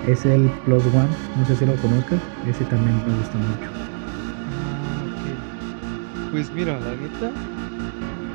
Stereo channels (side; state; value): left; silent; digital silence